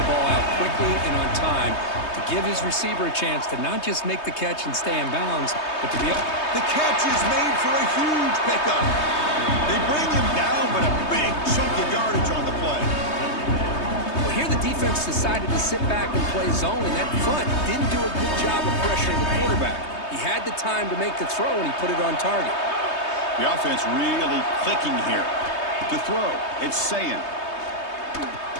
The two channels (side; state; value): right; late; 3.2 ms